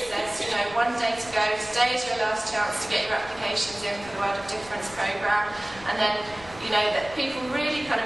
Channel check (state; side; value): noise; left; rumble, 19 dB below the sound